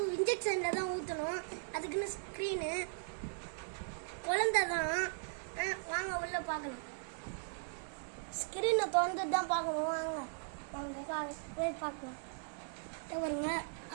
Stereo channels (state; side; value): silent; left; digital silence